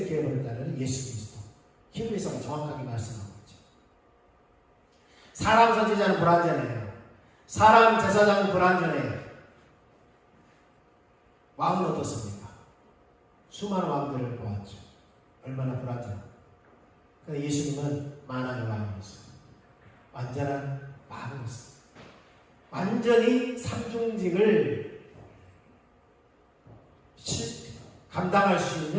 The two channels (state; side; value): identical; both; correlation 1.00